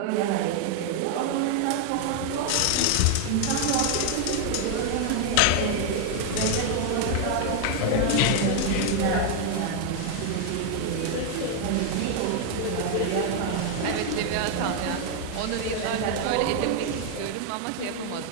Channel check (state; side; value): different; both; correlation 0.00